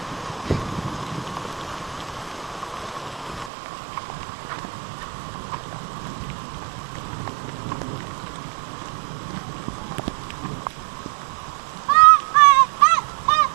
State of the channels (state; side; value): drops out; left; at 3.5 s